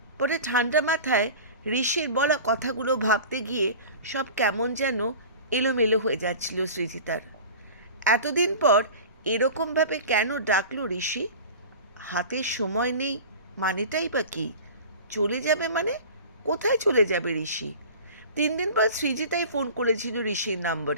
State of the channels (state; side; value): inverted; both; correlation -0.37